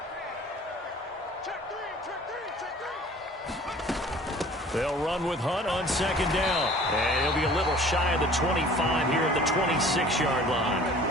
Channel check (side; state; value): both; normal; correlation 0.48